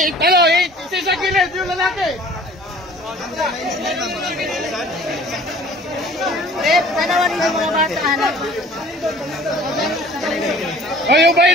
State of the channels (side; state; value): both; normal; correlation 0.50